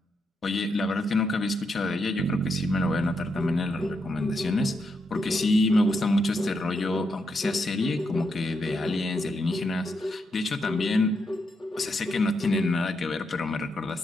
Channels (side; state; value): both; normal; correlation 0.81